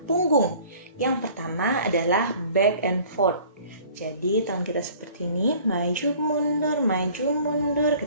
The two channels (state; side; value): inverted; both; correlation -0.51